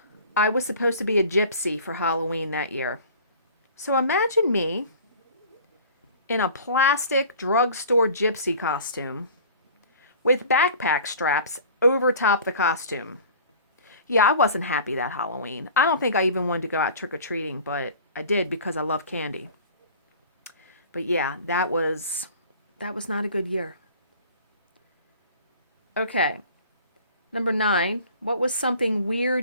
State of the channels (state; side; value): inverted; both; correlation -0.44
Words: I was supposed to be a gypsy for Halloween that year. So imagine me in a plastic drugstore gypsy costume with backpack straps over top the costume. Yeah, I wasn't happy that Halloween. I don't think I even wanted to go out trick-or-treating, but I did because I love candy. But yeah, that was not a good year. Okay. Number 9, what was something